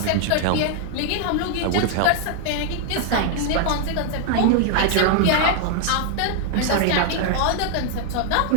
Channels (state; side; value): different; both; correlation 0.00